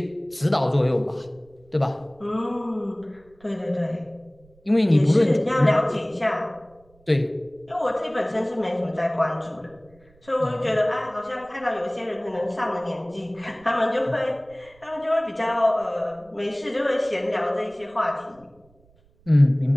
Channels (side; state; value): right; noise; rumble, 30 dB below the sound